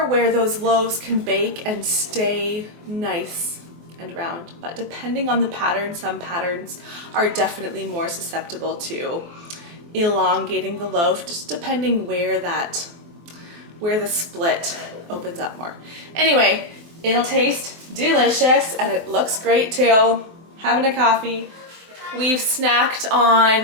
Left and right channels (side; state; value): left; late; 23 ms